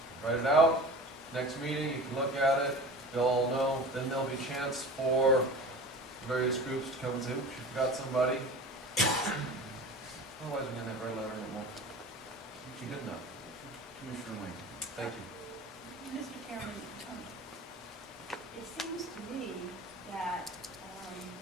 write it out, next meeting, you can look at it, they'll all know, then there'll be a chance for various groups to come and say, oops, you forgot somebody. Otherwise, we're gonna have our letter and it won't be good enough. Commissioner Wayne. Thank you. Mr. Chairman, it seems to me that,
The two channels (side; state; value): both; normal; correlation 0.37